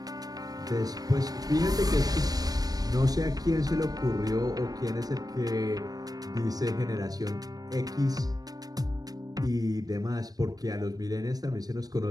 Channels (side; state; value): left; late; 0.18 ms